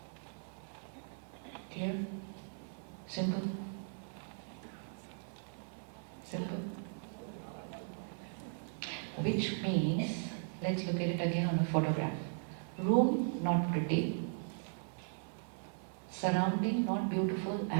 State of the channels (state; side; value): silent; left; 52 dB below the other